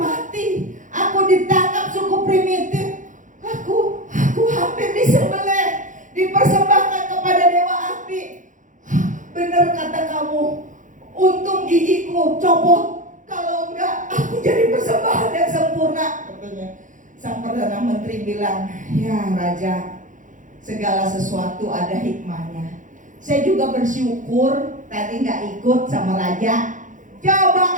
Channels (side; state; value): left; late; 0.37 ms